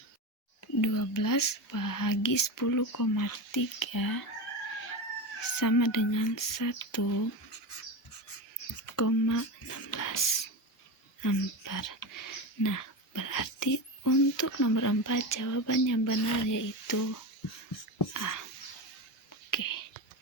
12 bahagi 10,3 sama dengan 1,16 ampere. Nah, berarti untuk nomor 4 jawaban yang benar yaitu A. Oke.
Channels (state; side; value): normal; both; correlation 0.21